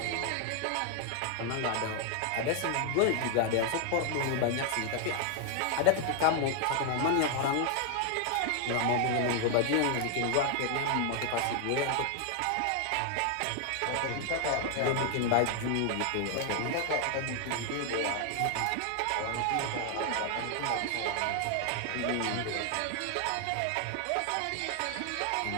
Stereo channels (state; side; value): different; both; correlation 0.00